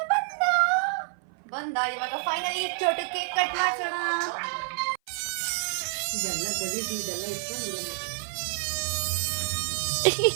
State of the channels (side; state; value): left; silent; 56 dB below the other